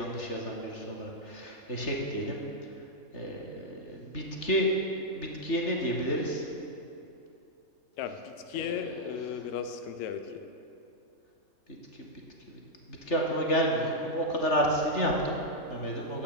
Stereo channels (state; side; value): late; right; 3.4 ms